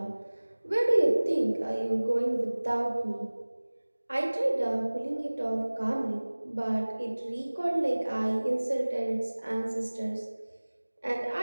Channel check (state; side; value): inverted; both; correlation -1.00